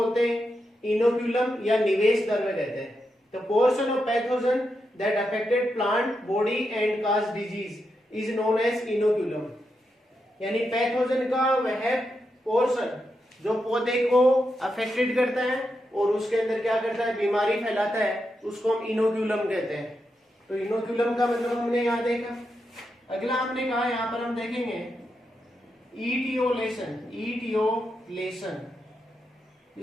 हैं इनोक्यूलम या निवेश द्रव्य कहते हैं। The portion of pathogen that affected plant body and cause disease is known as inoculum. यानी पैथोजन का वह पोर्शन जो पौधे को अफेक्टेड करता है और उसके अंदर क्या करता है, बीमारी फैलाता है, उसको हम इनोक्यूलम कहते हैं। तो इनोक्यूलम का मतलब हमने यहाँ देखा। अगला हमने कहा, यहाँ पर हम देखेंगे ईटियोलेशन।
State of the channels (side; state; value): both; normal; correlation 0.85